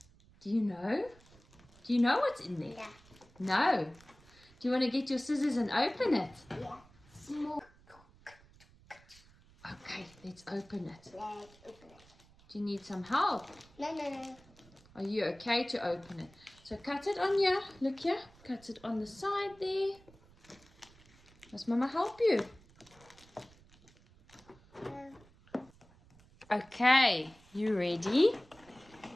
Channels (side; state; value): right; noise; rumble, 26 dB below the sound